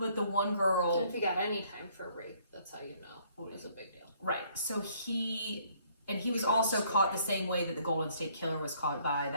the one girl, If you got any time for rape, that's how you know it was a big deal. right? So he was also caught the same way that the Golden State Killer was caught by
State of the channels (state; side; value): inverted; both; correlation -0.63